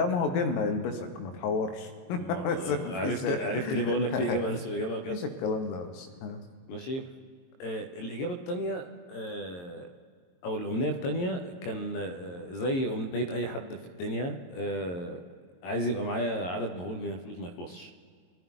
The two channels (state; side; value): late; right; 22 ms